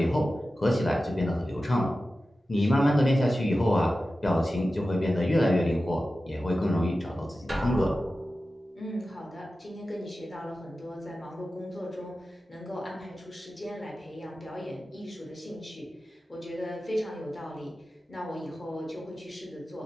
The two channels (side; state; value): both; normal; correlation 0.94